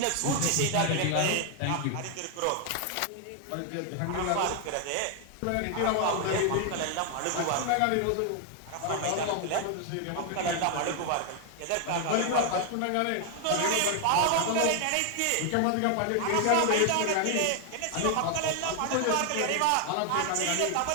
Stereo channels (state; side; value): different; both; correlation 0.00